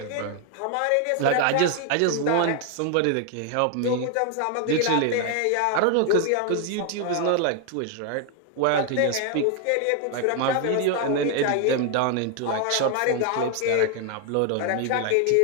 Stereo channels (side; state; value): both; different; correlation 0.00